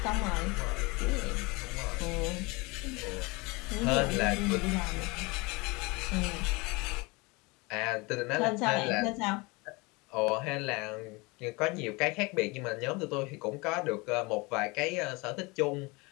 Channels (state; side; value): quieter; right; 26.0 dB